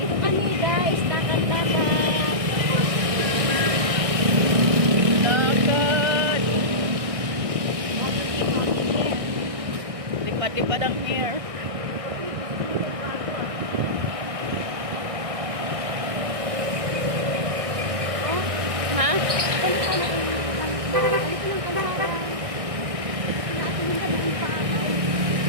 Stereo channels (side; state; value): left; late; 1.6 ms